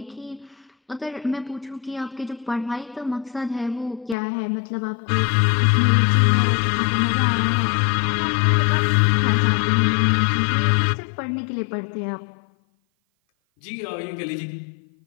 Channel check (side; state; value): right; drops out; at 4.2 s